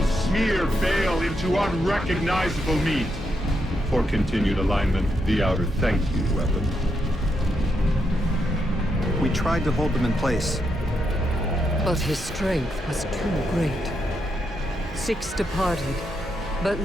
smear Bale into unrecognizable meat. For continued alignment, the Outer thank you, weapon. We tried to hold them in place. But his strength was too great. 6 departed, but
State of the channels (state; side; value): normal; both; correlation 0.81